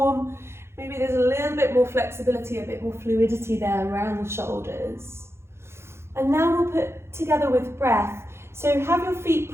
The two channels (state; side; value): late; left; 0.12 ms